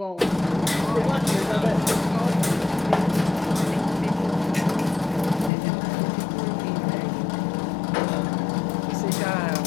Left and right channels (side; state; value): right; drops out; at 5.5 s